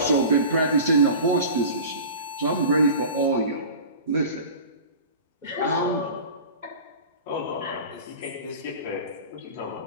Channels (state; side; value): inverted; both; correlation -0.36